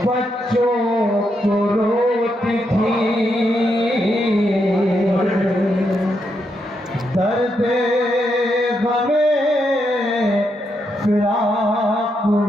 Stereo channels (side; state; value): both; normal; correlation 0.81